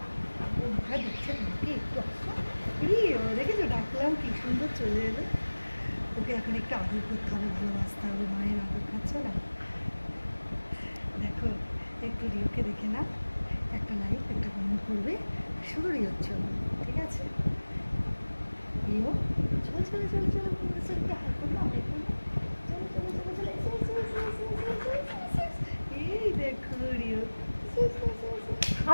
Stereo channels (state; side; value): inverted; both; correlation -1.00